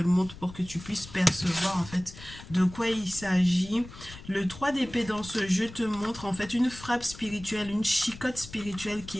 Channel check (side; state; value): left; noise; rumble, 16 dB below the sound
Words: montre pour que tu puisses percevoir en fait de quoi il s'agit. Le 3 d'épée dans ce jeu te montre en fait une frappe spirituelle, une chicotte spirituelle